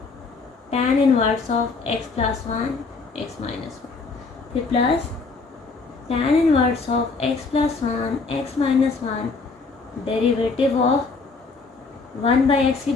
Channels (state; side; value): quieter; right; 4.2 dB